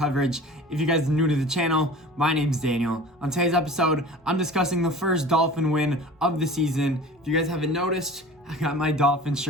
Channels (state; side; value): normal; both; correlation 0.41